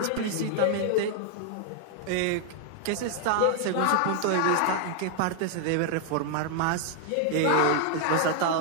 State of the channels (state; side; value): different; both; correlation 0.00